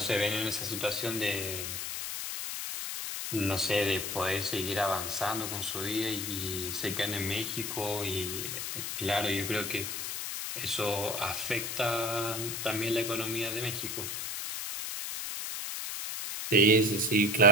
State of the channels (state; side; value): noise; left; hiss, 4 dB below the sound